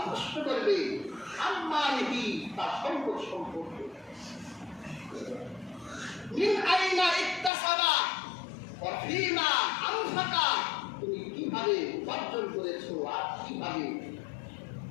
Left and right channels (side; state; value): right; drops out; at 7.5 s